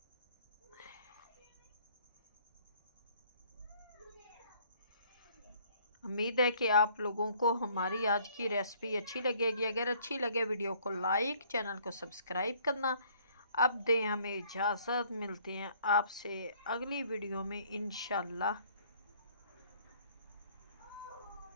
उम्मीद है कि आप लोगों को हमारी आज की रेसिपी अच्छी लगेगी। अगर अच्छी लगे वीडियो को लाइक, चैनल को सब्सक्राइब करना। अब दें हमें इजाज़त, मिलते हैं आपसे अगली वीडियो में इंशाल्लाह।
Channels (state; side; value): inverted; both; correlation -0.60